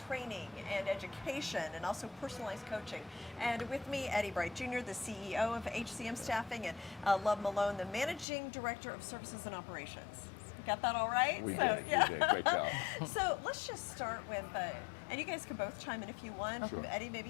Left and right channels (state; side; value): drops out; right; at 8.2 s